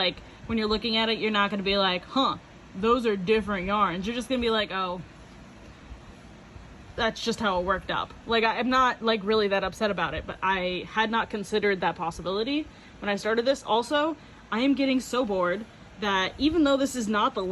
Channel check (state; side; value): identical; both; correlation 1.00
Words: when you're looking at it, you're not gonna be like, huh, those are different yarns. You're just gonna be like, oh, that's just how it worked up. Like, I'm not like really that upset about it, but I had not considered that possibility when I started this. Also, I am getting so bored that even though this is not the